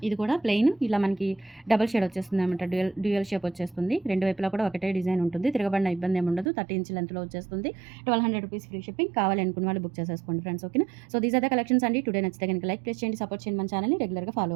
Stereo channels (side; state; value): left; drops out; at 6.5 s